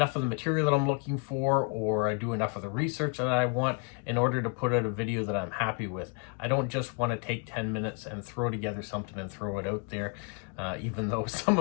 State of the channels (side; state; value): right; quieter; 35.7 dB